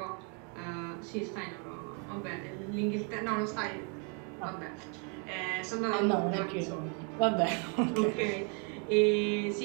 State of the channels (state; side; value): quieter; left; 37.3 dB